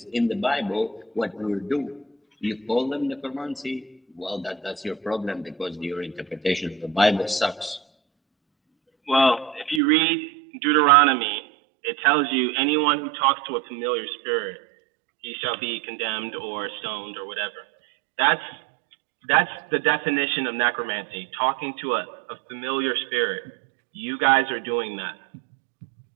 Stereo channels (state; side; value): drops out; left; at 9.8 s